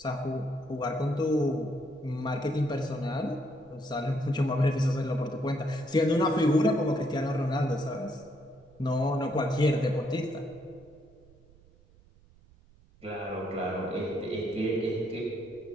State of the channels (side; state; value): right; noise; rumble, 27 dB below the sound